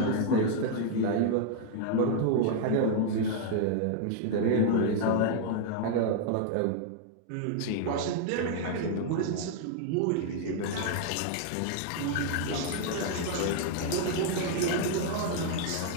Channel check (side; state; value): both; different; correlation 0.00